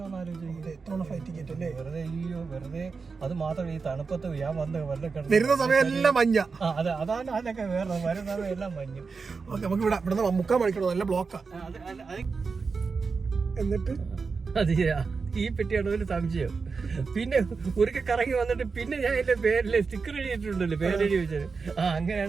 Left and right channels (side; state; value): left; quieter; 4.8 dB